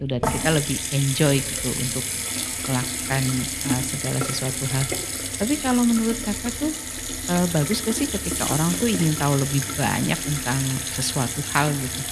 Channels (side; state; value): both; identical; correlation 1.00